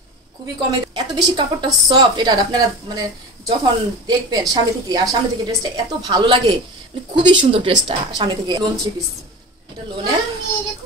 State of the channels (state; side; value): normal; both; correlation 0.31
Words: খুবই কমে, এত বেশি কাপড়টা সফট। এটা আপনারা মানে যখন দেখবেন সামনে থেকে, আর সামনে থেকে ড্রেসটা এত ভালো লাগে, মানে খুবই সুন্দর ড্রেসটা সামনে থেকে। লোন 3 পিস, এটা লোনের।